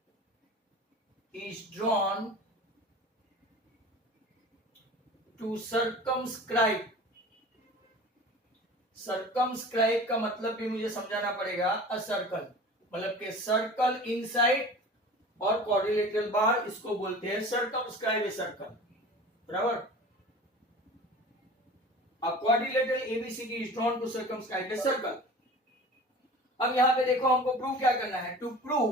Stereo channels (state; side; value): normal; both; correlation 0.39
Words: is drawn to circumscribe। Circumscribe का मतलब भी मुझे समझाना पड़ेगा। अ सर्कल मतलब के सर्कल इनसाइड और क्वाड्रिलेटरल बार, इसको बोलते हैं सर्कमस्क्राइब ए सर्कल, बराबर। A quadrilateral ABCD is drawn to circumscribe a circle. अब यहां पे देखो, हमको प्रूव क्या करना है। To